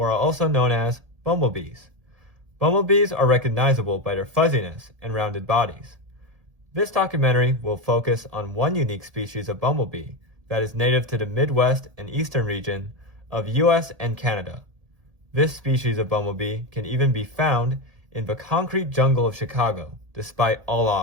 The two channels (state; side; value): late; left; 1.8 ms